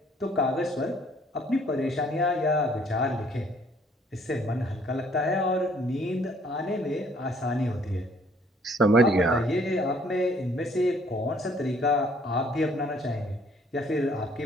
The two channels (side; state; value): both; normal; correlation 0.62